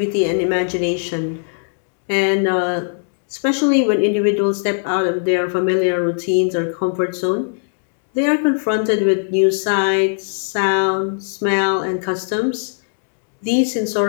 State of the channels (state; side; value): silent; right; digital silence